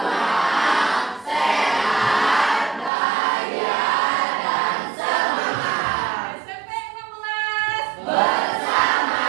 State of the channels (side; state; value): left; drops out; at 2.9 s